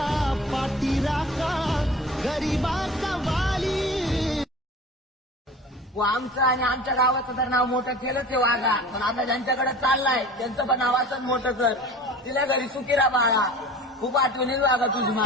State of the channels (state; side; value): normal; both; correlation 0.40